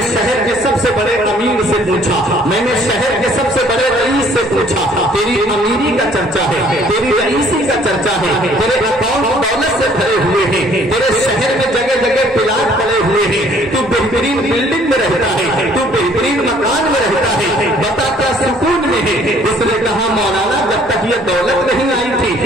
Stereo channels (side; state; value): both; normal; correlation 0.59